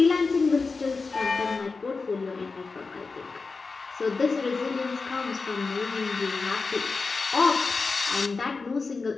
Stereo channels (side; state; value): right; quieter; 4.3 dB